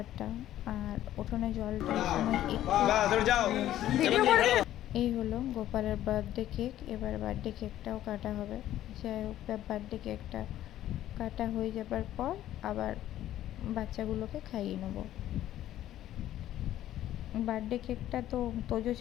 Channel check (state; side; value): quieter; right; 12.9 dB